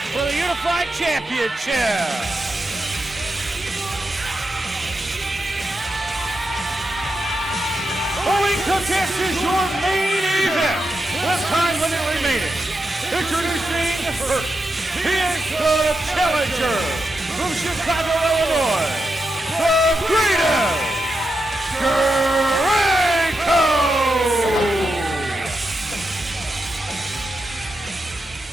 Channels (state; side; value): normal; both; correlation 0.87